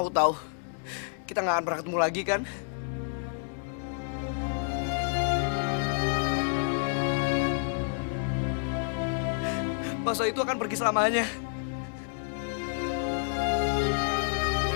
tahu kita nggak akan pernah ketemu lagi kan? Mas itu akan pergi selamanya.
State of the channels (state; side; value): silent; right; 58 dB below the other